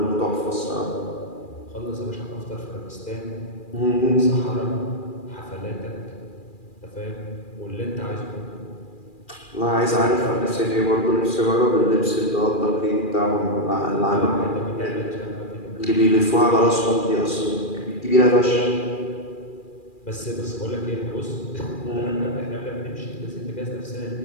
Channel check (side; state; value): right; late; 2.4 ms